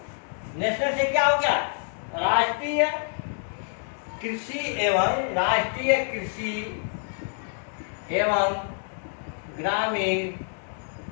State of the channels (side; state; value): right; silent; 60 dB below the other